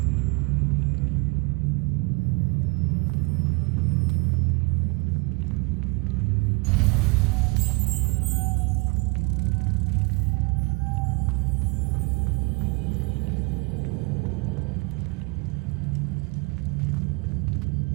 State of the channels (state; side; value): quieter; left; 28.4 dB